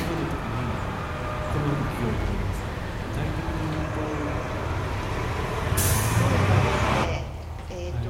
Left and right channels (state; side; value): identical; both; correlation 1.00